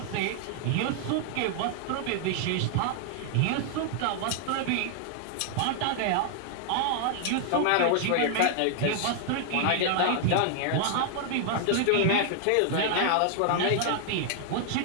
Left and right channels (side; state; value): both; different; correlation 0.00